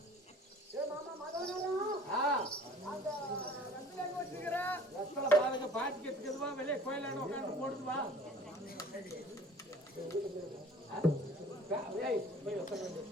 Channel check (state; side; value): normal; both; correlation 0.48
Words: பாட்டிக்கு வெளியே கோயிலான உட்காந்து போடுதுவா.